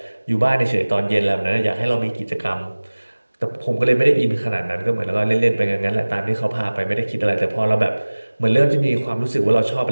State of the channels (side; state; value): both; inverted; correlation -1.00